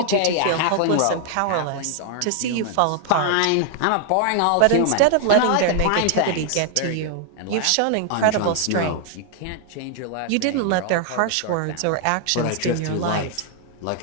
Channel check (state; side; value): different; both; correlation 0.00